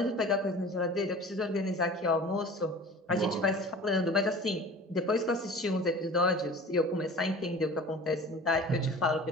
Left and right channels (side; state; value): both; normal; correlation 0.41